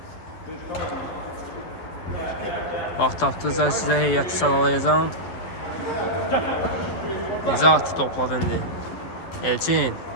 Vaxt tapdıqca sizə heyəti sadalayacağım. Nizat topladı indi. Elçin.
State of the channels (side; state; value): right; late; 12 ms